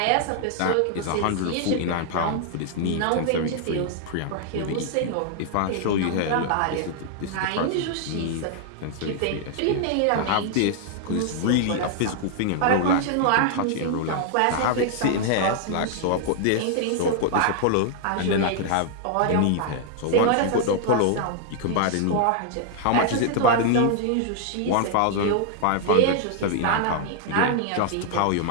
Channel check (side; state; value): both; different; correlation -0.01